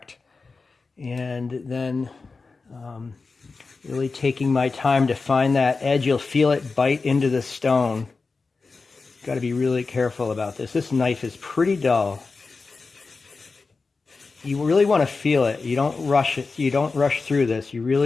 And then really taking my time to find that edge. You'll feel it bite into the stone. Got to be really careful about this. This knife is pretty dull. You really want to feel it. You don't rush it. You don't rush through this. You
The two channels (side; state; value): right; quieter; 4.2 dB